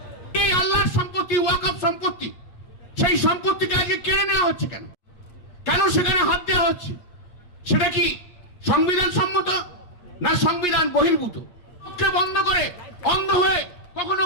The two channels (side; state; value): right; late; 8.4 ms